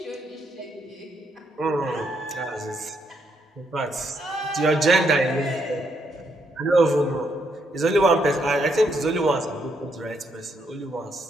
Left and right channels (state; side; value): normal; both; correlation 0.76